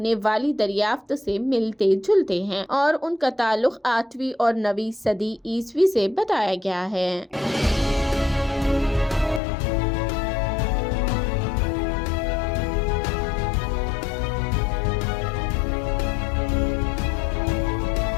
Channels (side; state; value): right; drops out; at 9.4 s